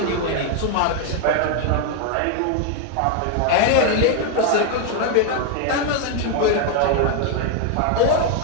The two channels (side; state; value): both; different; correlation 0.01